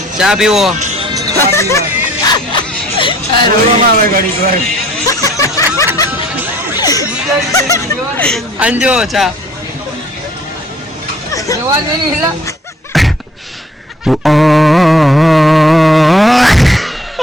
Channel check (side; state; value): both; normal; correlation 0.57